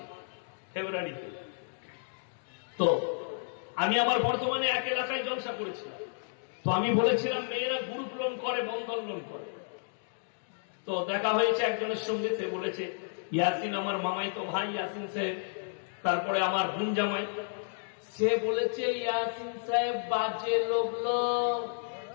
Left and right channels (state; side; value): silent; right; digital silence